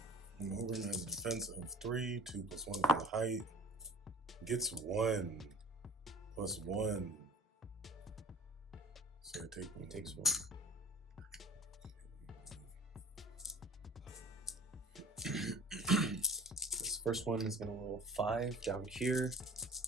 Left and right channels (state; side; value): normal; both; correlation 0.42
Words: Mogrim has a defense of 3, 2 plus 1 for the height. Gets 1 plus 1. So I take 1. He takes 1. This first one is going to roll 5 down here.